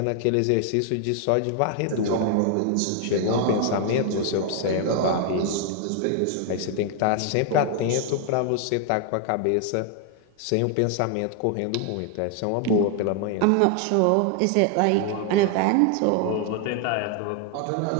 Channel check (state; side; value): different; both; correlation 0.00